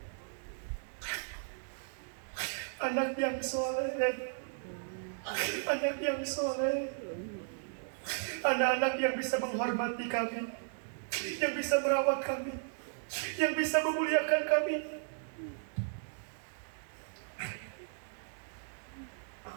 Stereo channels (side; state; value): left; silent; digital silence